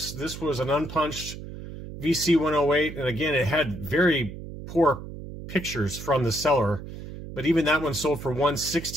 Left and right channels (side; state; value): right; noise; hum, 11 dB below the sound